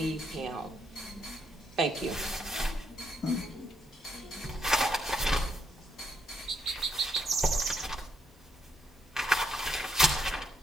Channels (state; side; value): normal; both; correlation 0.74